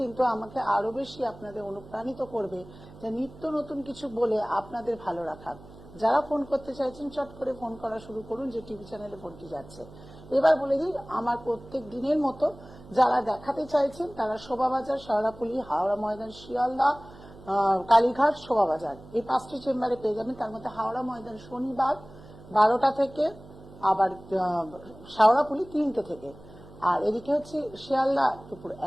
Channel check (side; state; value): right; noise; hum, 19 dB below the sound